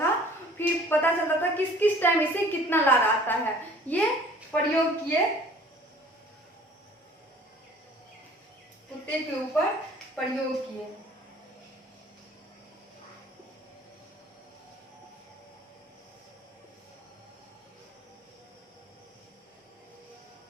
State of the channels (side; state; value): both; normal; correlation 0.51